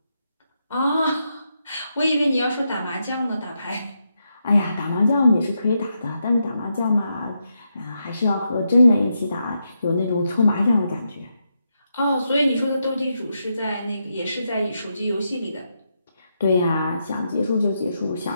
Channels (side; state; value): both; inverted; correlation -0.83